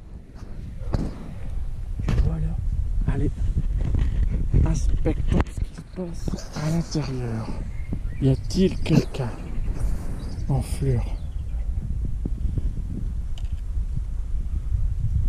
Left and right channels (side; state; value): both; identical; correlation 1.00